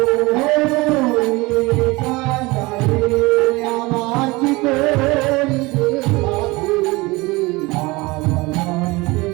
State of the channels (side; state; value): left; quieter; 23.1 dB